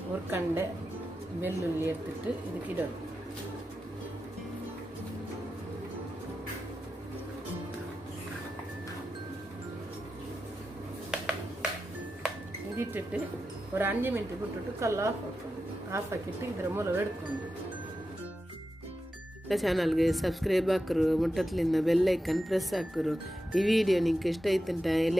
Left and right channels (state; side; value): normal; both; correlation 0.90